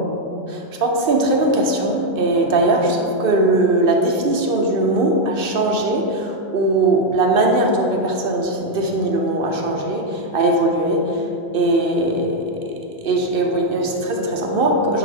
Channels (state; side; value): late; left; 2.6 ms